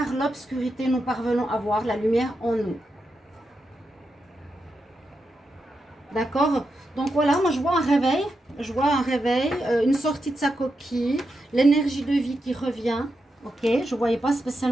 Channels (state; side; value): normal; both; correlation 0.86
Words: l'obscurité, nous parvenons à voir la lumière en nous. D'accord? Donc voilà, moi je vois un réveil. Je vois un réveil, une sortie de sa coquille, l'énergie de vie qui revient. Ok, je ne voyais pas